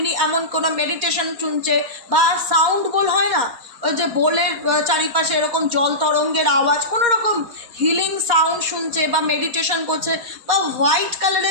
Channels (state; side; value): late; left; 4.2 ms